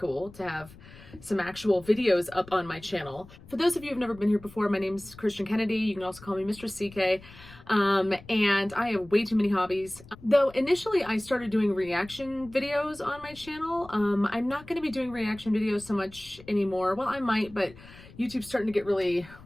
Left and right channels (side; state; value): left; noise; rumble, 20 dB below the sound